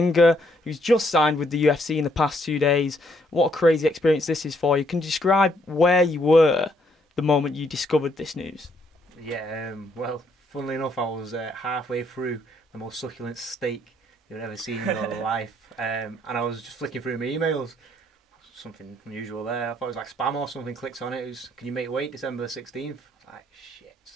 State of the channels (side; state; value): both; normal; correlation 0.70